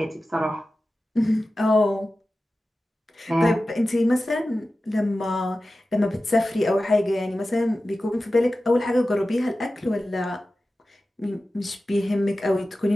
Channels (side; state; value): both; normal; correlation 0.94